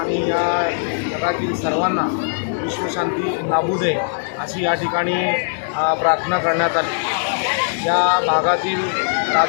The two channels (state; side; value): silent; right; 58 dB below the other